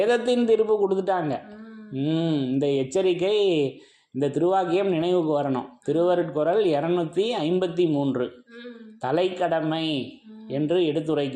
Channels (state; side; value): identical; both; correlation 1.00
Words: தீர்ப்பு கொடுத்துட்டாங்க. இந்த எச்சரிக்கை, இந்த திருவாக்கியம் நினைவுக்கு வரணும். திருவருட்குறள் 253 தலைக்கடமை என்று